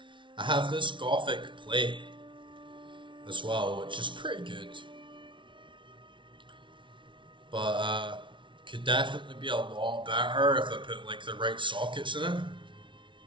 I have this Gothic plate as well, which is pretty good. But could definitely be a lot better if I put like the right sockets in it.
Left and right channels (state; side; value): late; left; 0.24 ms